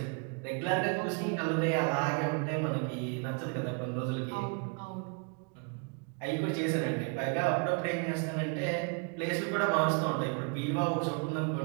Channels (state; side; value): quieter; left; 36.0 dB